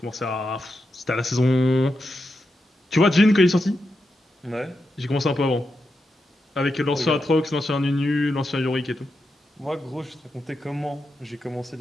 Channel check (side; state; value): both; normal; correlation 0.87